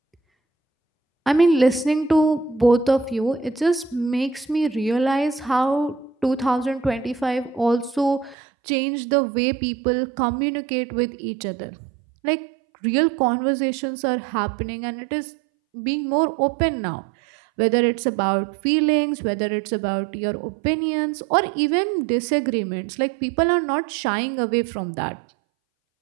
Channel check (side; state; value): left; drops out; at 8.3 s